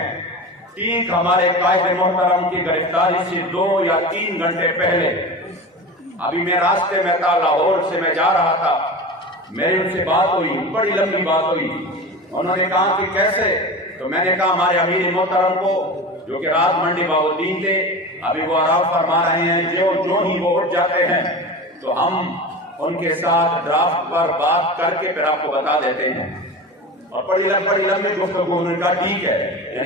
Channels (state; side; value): normal; both; correlation 0.30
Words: ठीक हमारे कायद मोहतरम की गिरफ्तारी से 2 या 3 घंटे पहले अभी मैं रास्ते में था, लाहौर से मैं जा रहा था, मेरी उनसे बात हुई, बड़ी लंबी बात हुई। उन्होंने कहा कि कैसे, तो मैंने कहा हमारे अमीर मोहतरम को जो कि रात मंडी बाउद्दीन थे, अभी वो आराम फरमा रहे हैं, जो ही वो उठ जाते हैं तो हम उनके साथ ड्राफ्ट पर बात करके फिर आपको बता देते हैं। और बड़ी लंबी गुफ्तगू, उन्होंने कहा ठीक है।